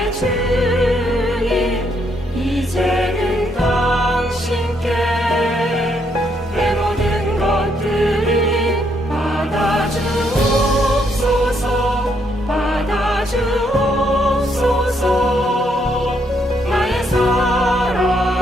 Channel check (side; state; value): both; normal; correlation 0.73